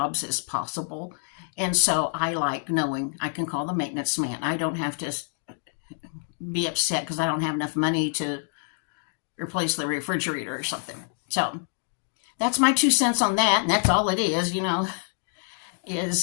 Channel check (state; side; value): silent; right; 58 dB below the other